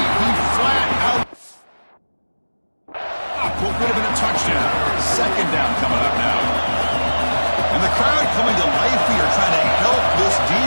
He flat out. What would have been a touchdown. 2nd down coming up now. And the crowd coming to life here, trying to help this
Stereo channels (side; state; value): both; inverted; correlation -1.00